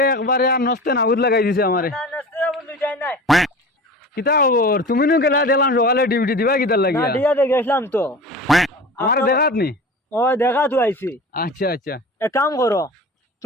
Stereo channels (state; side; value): normal; both; correlation 0.35